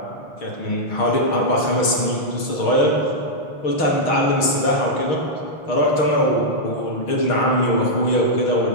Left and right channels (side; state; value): right; late; 6.4 ms